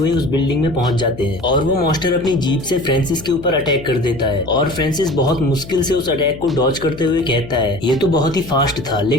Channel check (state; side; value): noise; left; hum, 16 dB below the sound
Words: उस बिल्डिंग में पहुंच जाते हैं। और वो मॉन्स्टर अपनी जीप से फ्रांसिस के ऊपर अटैक कर देता है। और फ्रांसिस बहुत मुश्किल से उस अटैक को डॉज करते हुए कहता है ये तो बहुत ही फास्ट था,